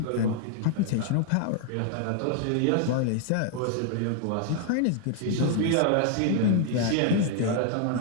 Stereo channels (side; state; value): both; different; correlation 0.00